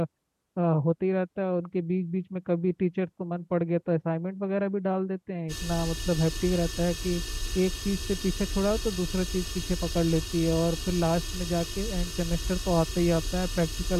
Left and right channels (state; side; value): identical; both; correlation 1.00